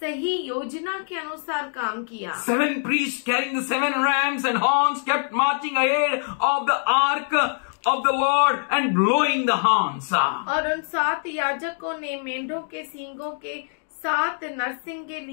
योजना के अनुसार काम किया। 7 priests carrying the 7 rams and horns kept marching ahead of the ark of the Lord and blowing the horns. और उन 7 याजकों ने मेंढों के सींगों के 7 नरसिंगे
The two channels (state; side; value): silent; right; 63 dB below the other